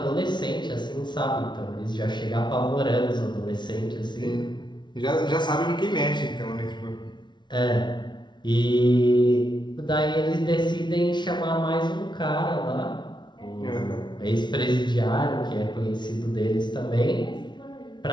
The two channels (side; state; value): right; late; 0.22 ms